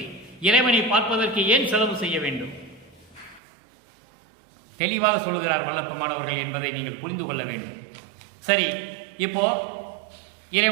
இறைவனை பார்ப்பதற்கு ஏன் செலவு செய்ய வேண்டும்? தெளிவாக சொல்லுகிறார் வல்லற்பமானவர்கள் என்பதை நீங்கள் புரிந்து கொள்ள வேண்டும். சரி, இப்போ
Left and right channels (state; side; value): drops out; left; at 3.4 s